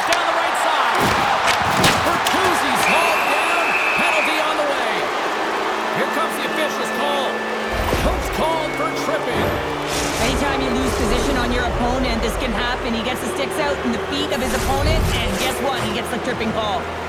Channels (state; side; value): identical; both; correlation 1.00